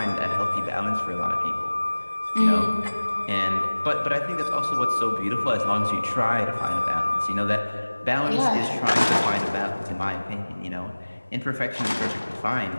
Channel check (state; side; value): inverted; both; correlation -1.00